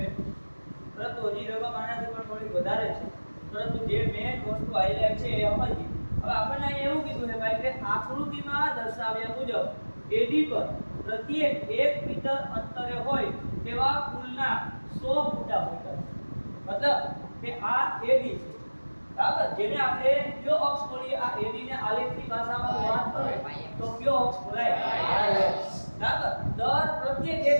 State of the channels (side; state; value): both; inverted; correlation -1.00